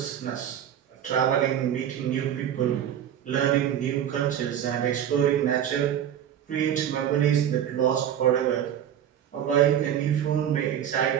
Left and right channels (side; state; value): left; quieter; 9.9 dB